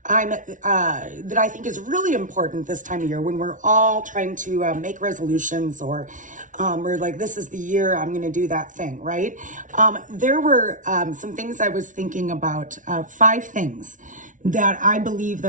I think is really important this time of year when we're all trying to make resolutions or we're like, this is the year I'm going to do that thing, right? There were some things I was thinking about, 5 things that I believe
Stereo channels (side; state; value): left; late; 0.37 ms